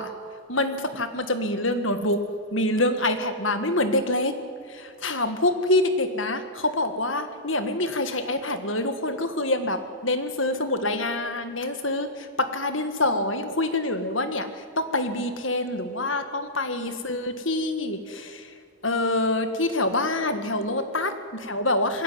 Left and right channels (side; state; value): both; normal; correlation -0.15